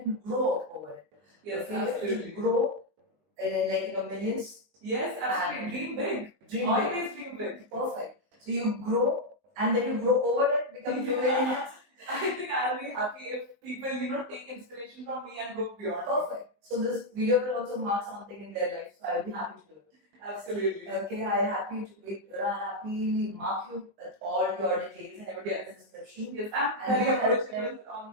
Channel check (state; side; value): late; left; 20 ms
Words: grow over it. Yes, Okay? absolutely. To grow millions. Yes, absolutely. And Dream big. Dream Always dream big. big. Perfect. So you grow and then you grow over it, become 2 million. I think I'll be happy if people, take inspiration from me and go beyond. Perfect. So this video will also mark something in their life. So I will be happy to do it. Absolutely. Okay, I happily mark you with all your details and everything in the description. Yes, I'm And very you can approachable